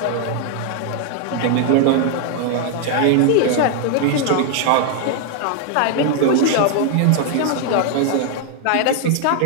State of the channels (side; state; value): both; different; correlation 0.00